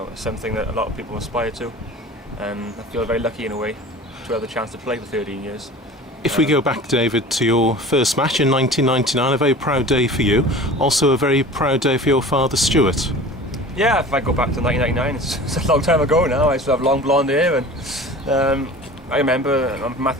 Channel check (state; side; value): normal; both; correlation 0.40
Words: Something that a lot of people aspire to, and I feel very lucky in a way to have the chance to play for 13 years. If we go back, David, to your first match in 1999, a very proud day for you, also a very proud day for your father, Stuart. Yeah, if I go back to 1999, it's a long time ago now. I still have long blonde hair, and I remember